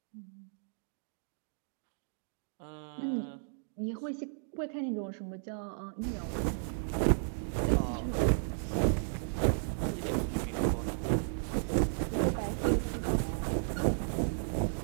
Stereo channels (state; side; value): silent; left; digital silence